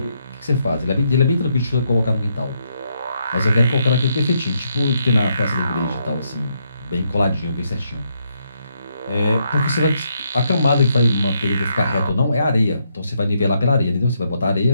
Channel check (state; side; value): inverted; both; correlation -0.77